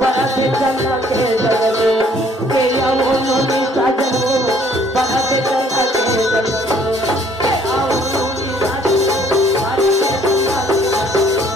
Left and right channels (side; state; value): both; normal; correlation 0.61